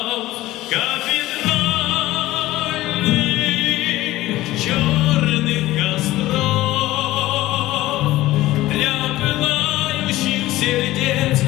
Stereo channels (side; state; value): right; quieter; 16.7 dB